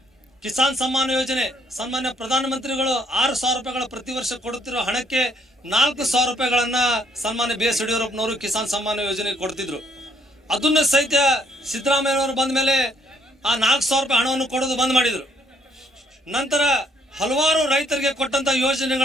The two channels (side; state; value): both; normal; correlation 0.67